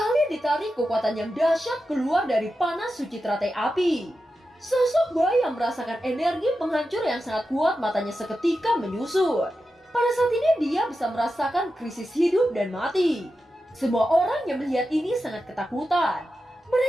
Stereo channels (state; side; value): normal; both; correlation 0.90